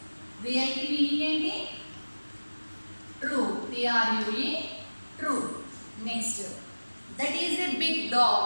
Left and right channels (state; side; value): inverted; both; correlation -1.00